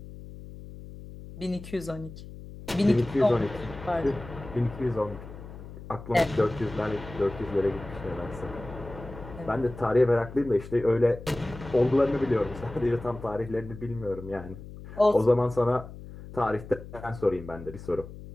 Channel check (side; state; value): left; noise; hum, 14 dB below the sound